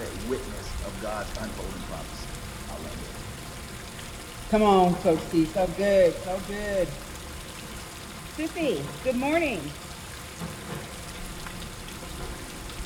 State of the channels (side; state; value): both; identical; correlation 1.00